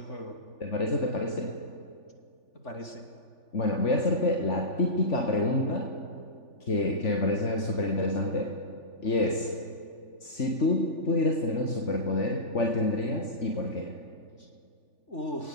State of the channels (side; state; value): right; late; 3.4 ms